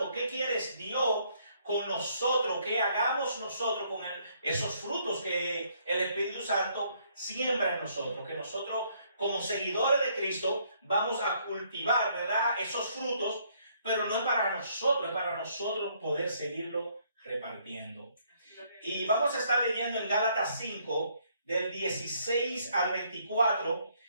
qué quiere Dios con nosotros, qué hagamos nosotros con esos frutos que el Espíritu Santo siembra en nosotros, que nosotros como seguidores de Cristo vamos a cultivar, ¿verdad? Esos frutos, pero no es para nosotros, es para nosotros poder seguirlo repartiendo. Y vamos a estar leyendo en Gálatas 5, del 16 al 24.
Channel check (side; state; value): both; inverted; correlation -0.68